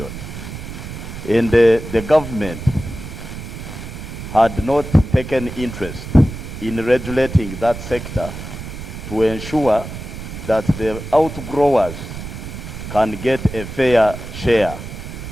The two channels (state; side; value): noise; right; rumble, 10 dB below the sound